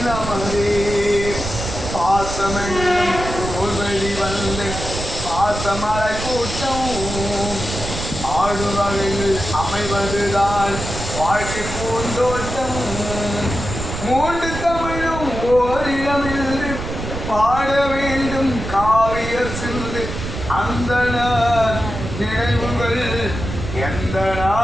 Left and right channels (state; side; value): noise; right; rumble, 6 dB below the sound